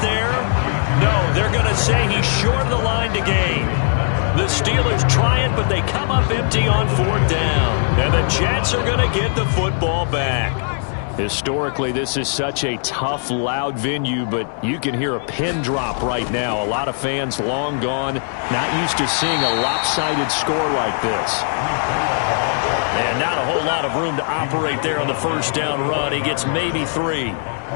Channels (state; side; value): silent; right; 64 dB below the other